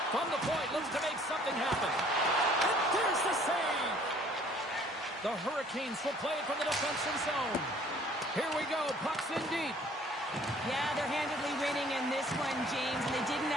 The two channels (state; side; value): normal; both; correlation 0.56